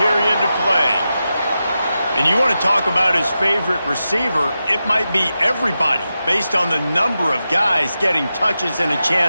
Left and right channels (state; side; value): inverted; both; correlation -0.91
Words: to play. And you want to talk about his favorite receiver, it might be everybody, based on the number of guys getting touches and a